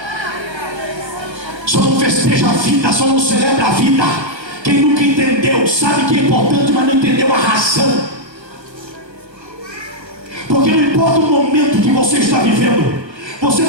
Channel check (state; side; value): late; left; 1.4 ms